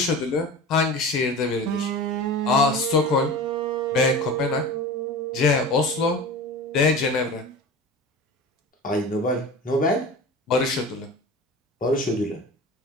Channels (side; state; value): both; normal; correlation 0.34